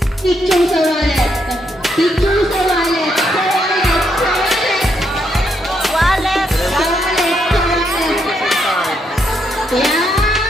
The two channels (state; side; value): normal; both; correlation 0.77